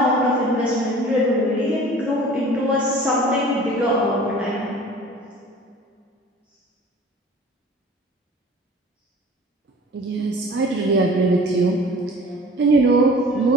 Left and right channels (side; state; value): both; normal; correlation 0.45